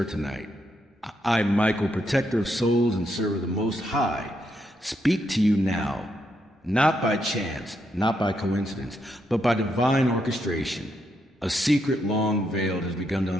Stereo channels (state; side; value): normal; both; correlation 0.79